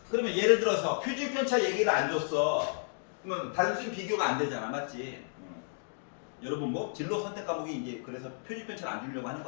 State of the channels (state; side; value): silent; right; digital silence